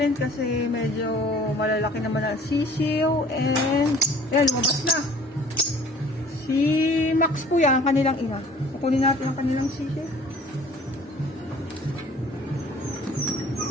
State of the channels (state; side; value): normal; both; correlation 0.51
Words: kasi medyo malalaki naman ang sisiw. And, yan, lumabas na. Si Max po yan, ang kanilang ina. Kukunin natin ang kanilang sisiw.